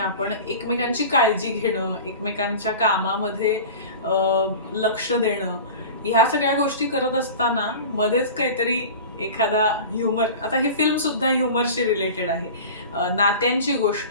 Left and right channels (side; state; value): both; inverted; correlation -0.36